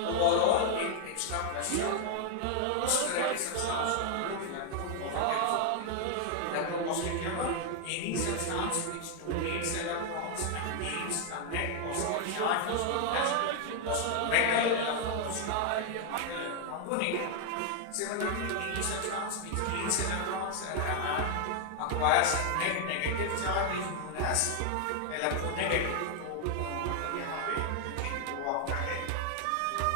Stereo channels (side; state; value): both; different; correlation 0.00